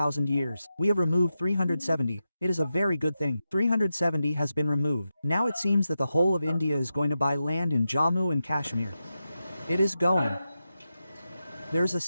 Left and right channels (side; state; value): both; inverted; correlation -0.90